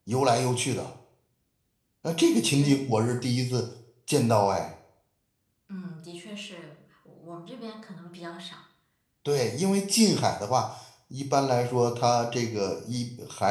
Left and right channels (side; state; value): both; identical; correlation 1.00